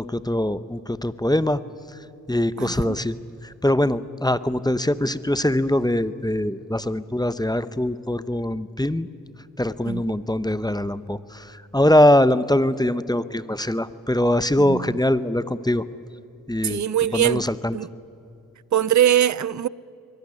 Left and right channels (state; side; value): normal; both; correlation 0.67